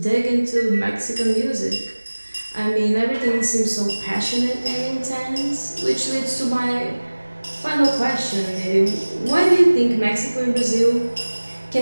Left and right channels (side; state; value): both; inverted; correlation -1.00